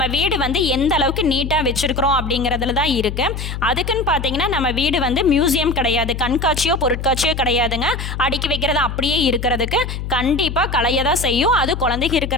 வீடு வந்து எந்த அளவுக்கு நீட்டாக வச்சுருக்கிறோம் அப்படிங்கிறதுல தான் இருக்குது. அதுக்குன்னு பார்த்தீங்கன்னா நம்ம வீடு வந்து மியூசியம் கிடையாது, கண்காட்சியோ பொருட்காட்சியோ கிடையாதுங்க. அடுக்கி வைக்கிறது அப்படியே இருக்கிறதுக்கு கண்டிப்பாக கலைய தான் செய்யும். அது குழந்தைங்க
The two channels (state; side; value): noise; left; hum, 6 dB below the sound